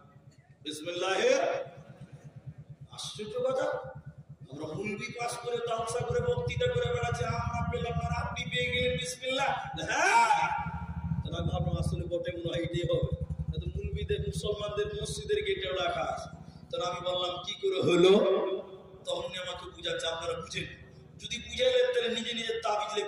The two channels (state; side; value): identical; both; correlation 1.00